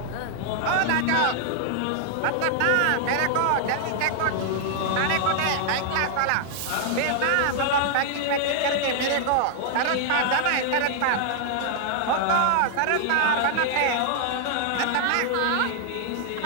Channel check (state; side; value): different; both; correlation 0.00